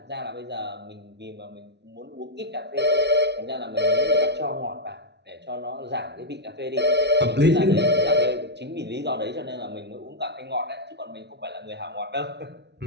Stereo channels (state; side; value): late; left; 0.50 ms